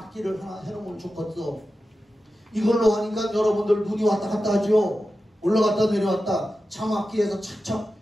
하나 해놓으면 좋겠어. 이걸로 하니까 여러분들 눈이 왔다 갔다 하죠. 올라갔다 내려왔다. 자막기에서 착착,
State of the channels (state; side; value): normal; both; correlation 0.92